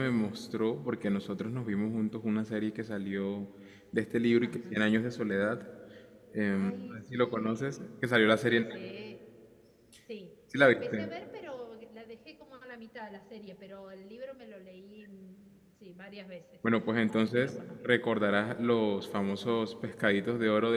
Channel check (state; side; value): identical; both; correlation 1.00